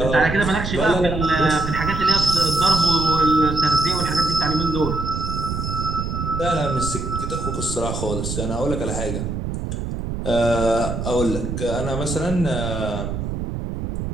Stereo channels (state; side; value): noise; right; rumble, 4 dB below the sound